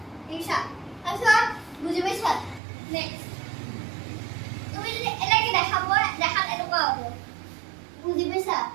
ঠিক আছে তাৰপিছত বুজি পাইছা নেক্সট তুমি যদি এনেকৈ দেখাত এনেকুৱা হ'ব বুজি পাইছা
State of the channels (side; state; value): left; drops out; at 2.6 s